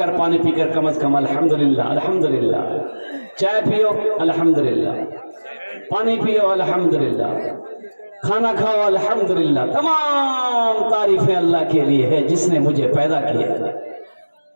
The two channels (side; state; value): both; inverted; correlation -1.00